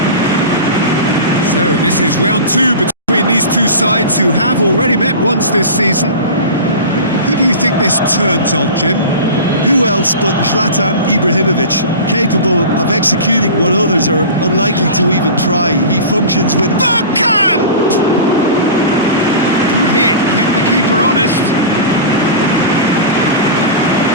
So this is round two between these two sides who have already met once this season. Who do you think this turns on, Jim? Who else but Zlatan Ibrahimovic, capable of executing what others are unlikely to even try. He functions with... Bergkamp! Good hit, kept the keeper honest.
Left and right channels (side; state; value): both; inverted; correlation -0.32